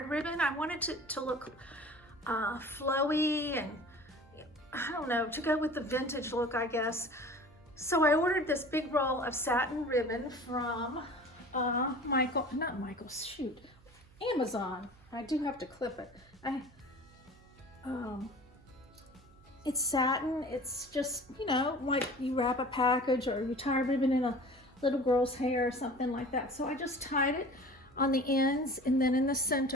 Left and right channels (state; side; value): noise; right; hum, 26 dB below the sound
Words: ribbon. I wanted it to look flowy and I don't know, to go with the vintage look, I guess. So I ordered this big roll of satin ribbon from Amazon. I do have to clip it. It's satin. It's just, you know, like you wrap a package or you tie a ribbon in a little girl's hair or something like that. So I just tied it on the ends, and then in the